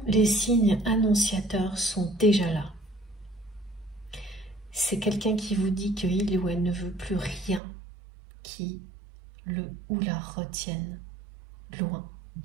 les signes annonciateurs sont déjà là. C'est quelqu'un qui vous dit qu'il ou elle ne veut plus rien qui le ou la retienne loin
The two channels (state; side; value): drops out; left; at 7.6 s